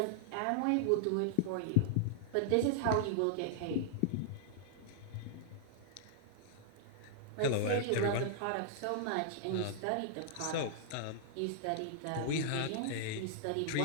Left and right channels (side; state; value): both; different; correlation -0.01